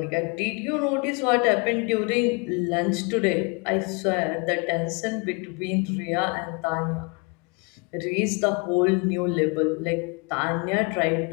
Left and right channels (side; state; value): right; quieter; 32.6 dB